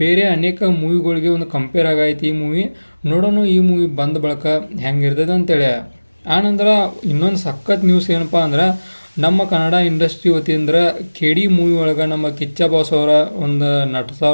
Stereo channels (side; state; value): both; inverted; correlation -1.00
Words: ಬೇರೆ ಅನೇಕ ಮೂವಿಗಳಿಗೆ ಒಂದು ಕಂಪೇರ್ ಆಗೈತಿ ಈ ಮೂವಿ. ನೋಡೋಣ ಈ ಮೂವಿ ಬಂದ ಬಳಕ ಹೆಂಗಿರ್ತೈತೆ ಅಂತೇಳಿ. ಆನಂತರ ಇನ್ನೊಂದು ಸಖತ್ ನ್ಯೂಸ್ ಏನಪ್ಪ ಅಂದ್ರೆ ನಮ್ಮ ಕನ್ನಡ ಇಂಡಸ್ಟ್ರಿ ವತಿಯಿಂದ KD ಮೂವಿ ಒಳಗೆ ನಮ್ಮ ಕಿಚ್ಚ ಬಾಸ್ ಅವರ ಒಂದು